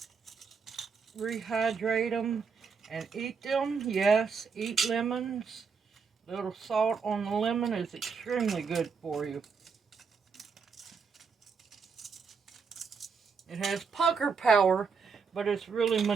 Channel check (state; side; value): quieter; left; 5.5 dB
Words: rehydrate them, and eat them. Yes, eat lemons. A little salt on the lemon is extremely good for you. It has pucker power, but it's really